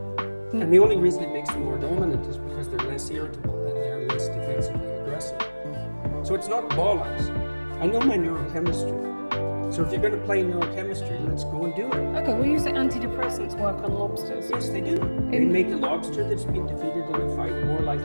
And the only reason it makes them more dominant is because they're less irritable and they're less defensively aggressive. So it's not bollocks. I know my neurochemistry. So if you're going to play neurochemistry, let's go and do it. Okay, well you say antidepressants work on lobsters. Yes, they do. They make a lobster that's been defeated in a fight more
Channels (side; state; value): both; inverted; correlation -1.00